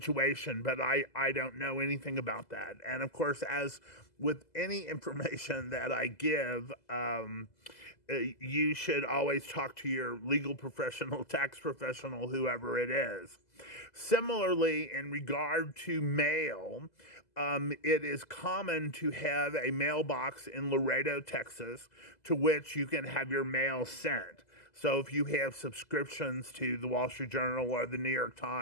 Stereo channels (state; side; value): late; right; 2.0 ms